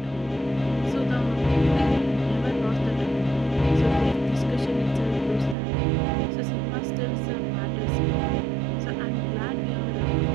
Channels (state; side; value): drops out; left; at 5.6 s